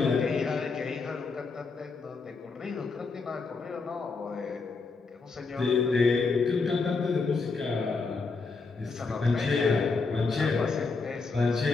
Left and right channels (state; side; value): quieter; right; 4.3 dB